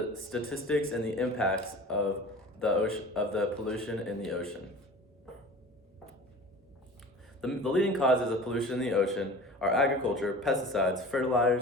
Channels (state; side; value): normal; both; correlation 0.39